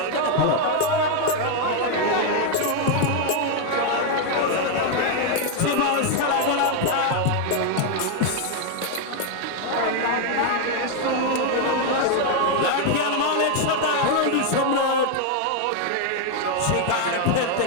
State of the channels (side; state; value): both; different; correlation 0.01